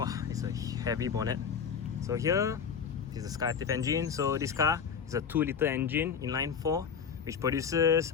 it's a heavy bonnet. So here is the SkyActiv engine. So this car is a 2-liter engine inline 4, which produces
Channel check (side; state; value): right; quieter; 6.9 dB